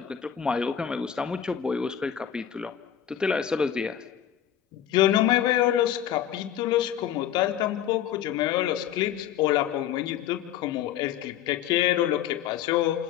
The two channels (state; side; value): quieter; right; 10.2 dB